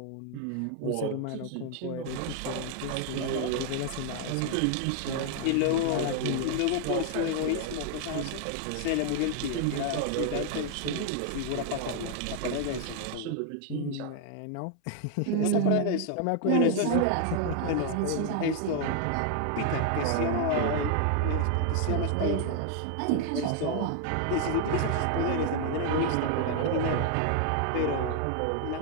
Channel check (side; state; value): both; different; correlation 0.00